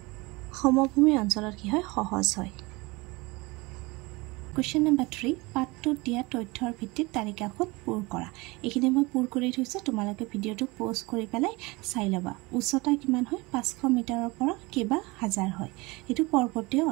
সমভূমি অঞ্চলত কি হয়? সহজ হয়। কুৱেশ্যন নম্বৰ 3, পাঠটোত দিয়া তথ্যৰ ভিত্তিত তালিকাখন পূৰ কৰা। এইখিনি মই পূৰ কৰি থৈছোঁ, তোমালোকে ভিডিঅ'টো প'জ কৰি পেলাই চাই ল'বা। উচ্চতা কিমান হয়? 500 মিটাৰৰ পৰা কেইবা হাজাৰ হয়। এইটো পৰ্বতীয়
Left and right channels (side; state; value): left; quieter; 24.1 dB